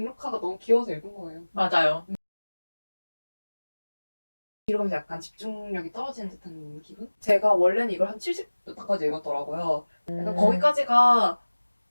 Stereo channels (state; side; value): inverted; both; correlation -1.00